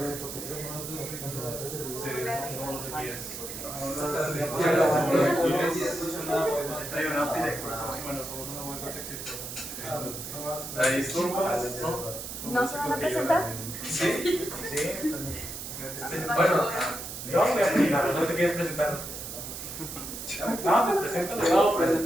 Sí, somos los guías. Bueno, somos una web exitosa. Ahí esturbas, ¿no? ¿No se van a presentar? Sí. Sí. Bueno, Yo voy a presentar, ¿no te quieres presentarlos? No, pues preséntalo. No,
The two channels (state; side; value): noise; right; hiss, 8 dB below the sound